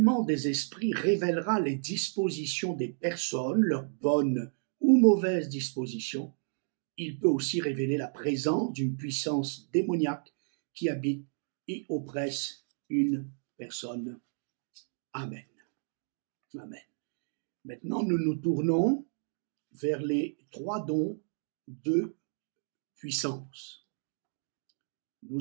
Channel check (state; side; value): silent; left; digital silence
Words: des esprits révélera les dispositions des personnes, leurs bonnes ou mauvaises dispositions. Il peut aussi révéler la présence d'une puissance démoniaque qui habite et oppresse une personne. Amen. Amen. Maintenant, nous nous tournons vers les trois dons de puissance.